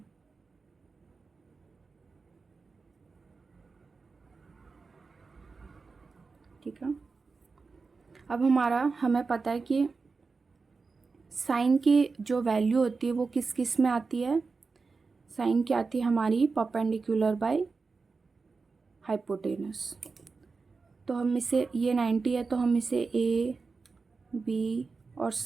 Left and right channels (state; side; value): quieter; left; 4.4 dB